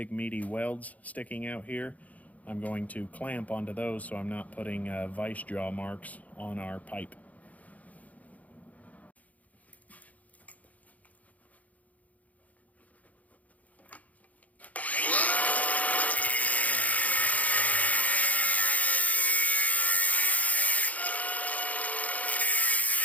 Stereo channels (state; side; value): late; right; 0.073 ms